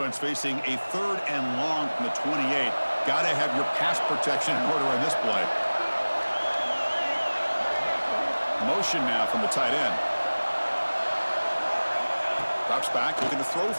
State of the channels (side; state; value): both; inverted; correlation -1.00